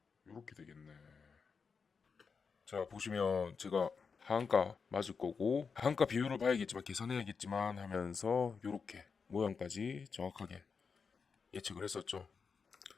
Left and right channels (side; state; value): right; quieter; 5.5 dB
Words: 이렇게 되겠네. 자, 보시면 제가 하한가 맞을 거고 하한가 비율을 봐야겠지만 계산해야겠지만 하면서 이렇게 모양까지 정확하게 예측을 했었죠.